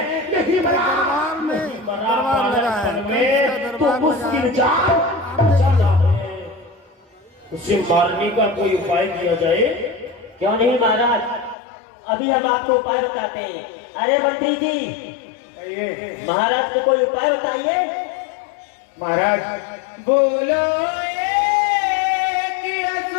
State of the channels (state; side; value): drops out; right; at 11.6 s